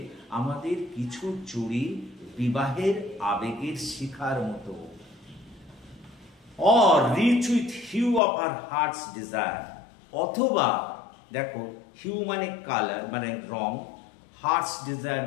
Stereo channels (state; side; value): drops out; right; at 8.2 s